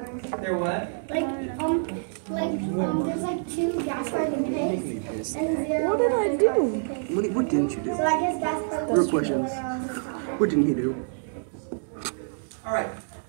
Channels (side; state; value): left; silent; digital silence